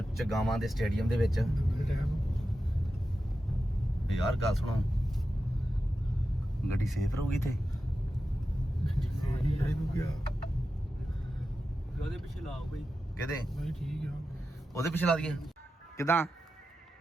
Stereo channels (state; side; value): normal; both; correlation 0.91